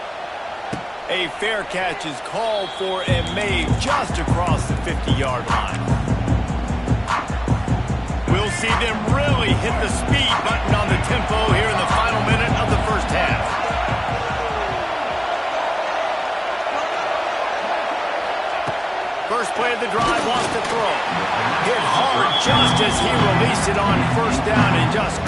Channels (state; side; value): identical; both; correlation 1.00